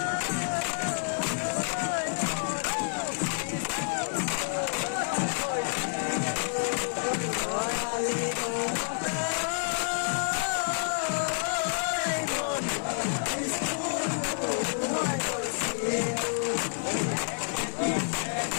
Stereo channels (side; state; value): right; silent; 59 dB below the other